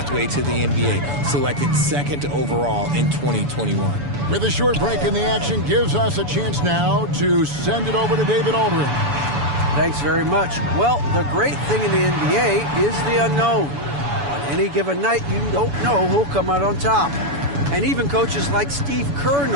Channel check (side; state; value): left; late; 7.0 ms